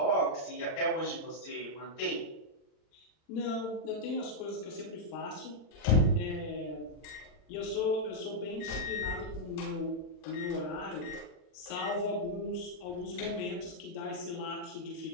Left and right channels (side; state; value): right; late; 39 ms